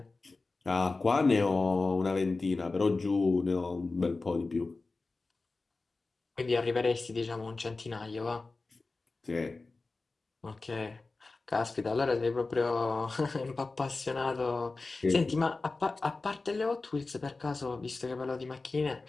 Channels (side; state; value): right; quieter; 3.6 dB